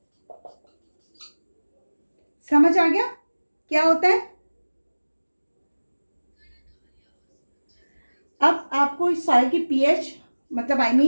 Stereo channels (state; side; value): inverted; both; correlation -1.00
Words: समझ आ गया क्या होता है। अब आपको इस सॉइल की पीएच मतलब आई